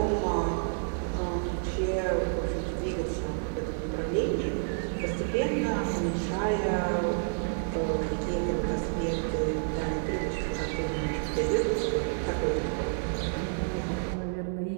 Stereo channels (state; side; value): silent; left; digital silence